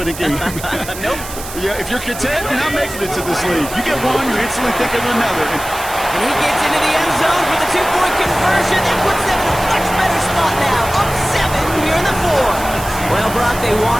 a game. Nope. Yeah, if you're content, you're not making it to this league. You get 1, you instantly think of another. And he gets into the end zone for the 2-point conversion. That puts them in a much better spot now. Up 7 here in the 4th. Well, Brock, they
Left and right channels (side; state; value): right; noise; hiss, 11 dB below the sound